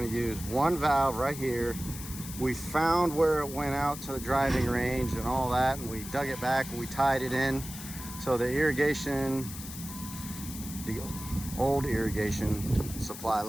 to use one valve right here. We found where it went out to the driving range and all that, and we dug it back and we tied it in. So the irrigation, the old irrigation supply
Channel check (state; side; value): noise; left; hiss, 11 dB below the sound